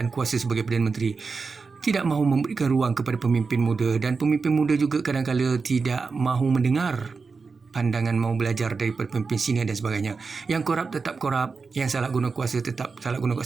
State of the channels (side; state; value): left; quieter; 4.7 dB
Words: kuasa sebagai Perdana Menteri. Tidak mahu memberikan ruang kepada pemimpin muda, dan pemimpin muda juga kadang-kadang tidak mahu mendengar pandangan, mau belajar daripada pemimpin senior dan sebagainya. Yang korup tetap korup, yang salah guna kuasa tetap salah guna